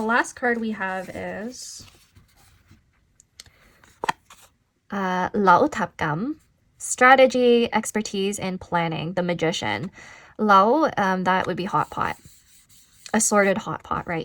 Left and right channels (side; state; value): both; identical; correlation 1.00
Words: last card we have is Lao Tap Gam, strategy, expertise, and planning, the magician. Lao, that would be hot pot. Assorted hot pot